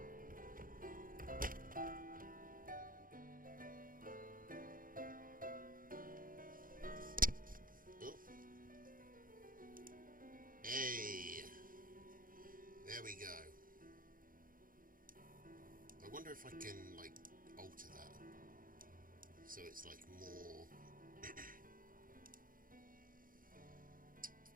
There we go. I wonder if I can, like, alter that so it's, like, more...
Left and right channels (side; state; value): left; late; 0.40 ms